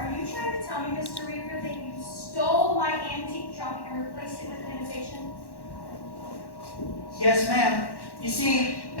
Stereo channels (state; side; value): late; right; 1.1 ms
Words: you trying to tell me, Mr. Reaver, that you stole my antique trunk and replaced it with an imitation? Yes, ma'am. You see,